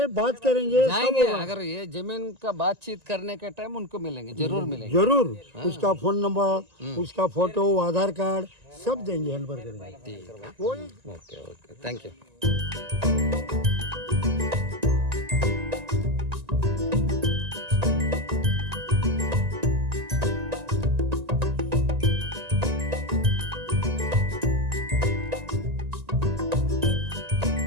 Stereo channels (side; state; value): left; late; 1.9 ms